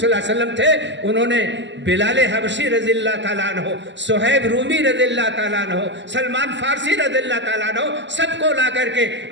اللہ علیہ وسلم تھے, انہوں نے بلال حبشی رضی اللہ تعالیٰ عنہ, صہیب رومی رضی اللہ تعالیٰ عنہ, سلمان فارسی رضی اللہ تعالیٰ عنہ, سب کو لا کر کے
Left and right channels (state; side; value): late; left; 0.53 ms